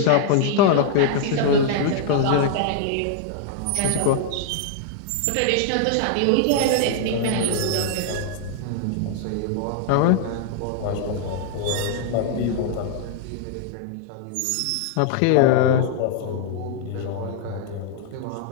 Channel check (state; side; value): different; both; correlation -0.01